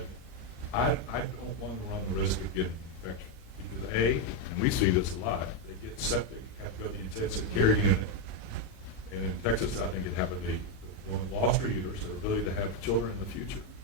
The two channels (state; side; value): late; right; 37 ms